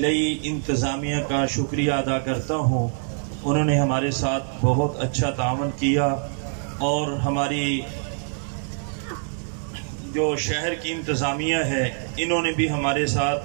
इंतज़ामिया का शुक्रिया अदा करता हूँ। उन्होंने हमारे साथ बहुत अच्छा तावन किया और हमारी जो शहर की इंतज़ामिया है इन्होंने भी हमारे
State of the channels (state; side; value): silent; left; 62 dB below the other